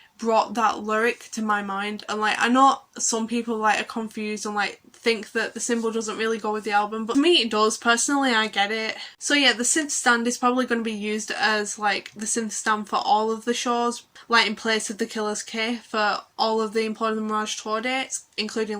brought that lyric to my mind. And like I know some people like are confused and like think that the symbol doesn't really go with the album, but to me it does. Personally I get it. So yeah, the synth stand is probably going to be used as like the synth stand for all of the shows, like in place of the Killers K for all of the Imploding the Mirage tour dates,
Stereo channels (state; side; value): identical; both; correlation 1.00